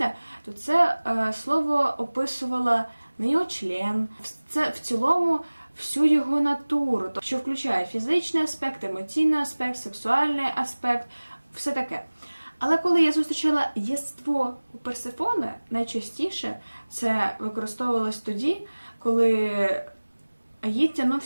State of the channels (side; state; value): both; inverted; correlation -1.00